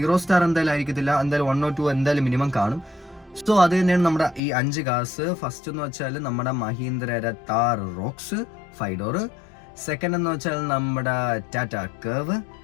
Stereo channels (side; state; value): right; drops out; at 4.4 s